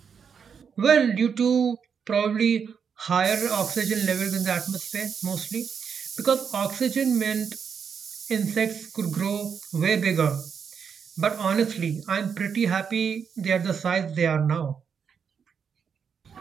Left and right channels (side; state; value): left; quieter; 6.8 dB